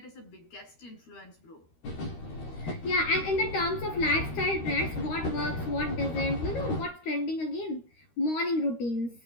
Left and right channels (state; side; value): late; right; 13 ms